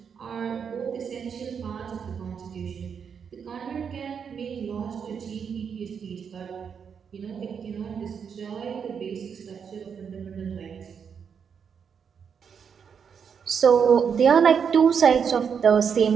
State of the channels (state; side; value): quieter; left; 6.9 dB